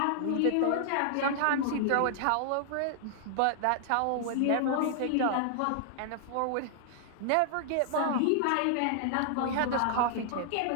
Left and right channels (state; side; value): different; both; correlation -0.01